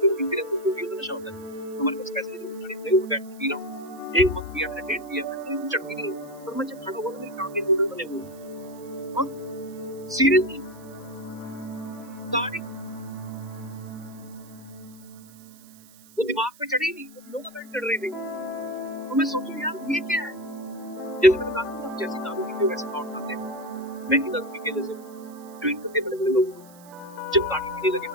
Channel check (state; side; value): noise; right; hiss, 23 dB below the sound